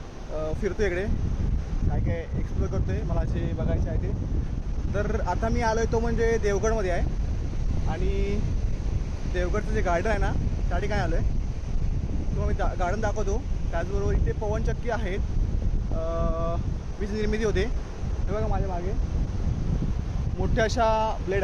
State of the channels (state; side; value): identical; both; correlation 1.00